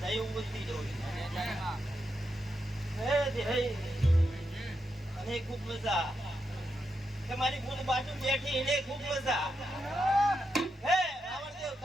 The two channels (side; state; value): both; normal; correlation 0.84